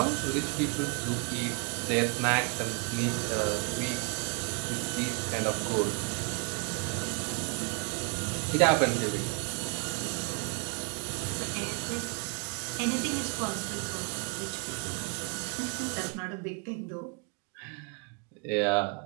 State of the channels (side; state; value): left; quieter; 36.0 dB